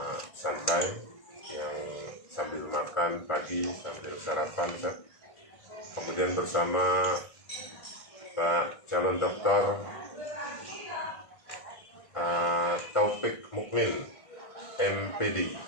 santai, yang sambil makan pagi, sambil sarapan. Kemudian bersama Pak calon dokter Taufik Mukmin, MPD,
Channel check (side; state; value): right; late; 1.5 ms